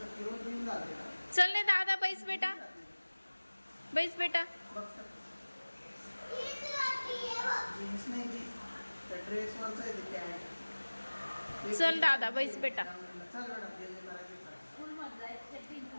चल ने दादा बैस बेटा, बैस बेटा. चल दादा बैस बेटा.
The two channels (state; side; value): inverted; both; correlation -1.00